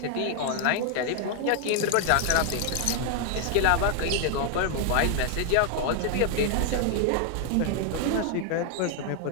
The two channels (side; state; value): both; different; correlation 0.00